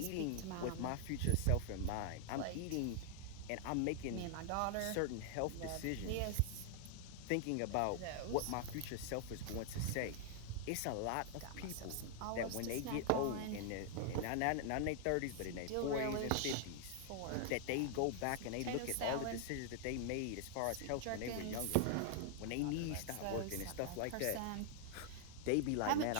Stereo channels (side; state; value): both; different; correlation 0.00